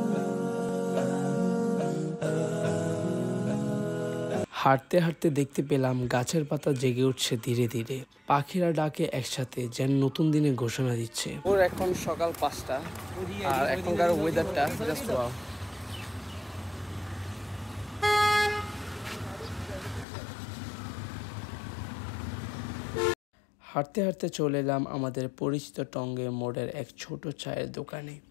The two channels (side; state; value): right; drops out; at 20.1 s